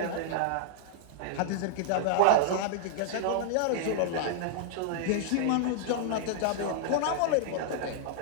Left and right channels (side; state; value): both; different; correlation -0.01